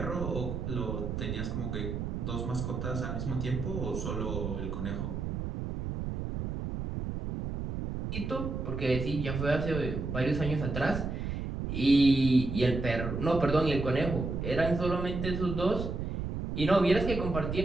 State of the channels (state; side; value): noise; right; rumble, 4 dB below the sound